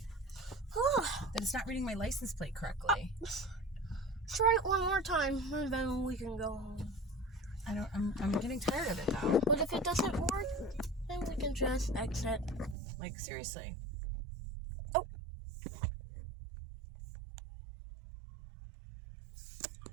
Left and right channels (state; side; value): drops out; left; at 12.8 s